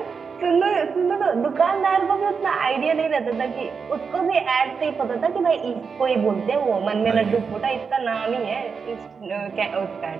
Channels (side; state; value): left; quieter; 5.6 dB